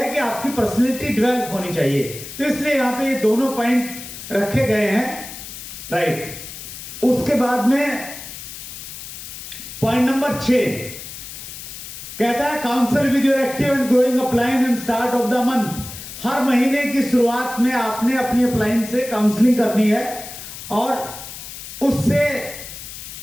कि आपकी पर्सनैलिटी डेवलप होनी चाहिए। तो इसलिए यहां पे ये दोनों पॉइंट रखे गए हैं, राइट। उसके बाद में पॉइंट नंबर 6 कहता है counsel with your active and growing upline and start of the month. हर महीने की शुरुआत में आपने अपनी अपलाइन से काउंसलिंग करनी है और उससे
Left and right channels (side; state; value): left; noise; hiss, 11 dB below the sound